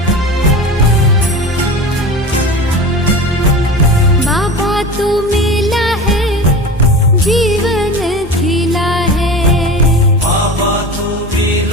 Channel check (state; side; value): normal; both; correlation 0.31